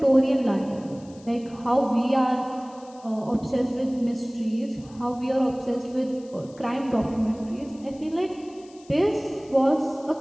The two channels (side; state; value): left; noise; hiss, 26 dB below the sound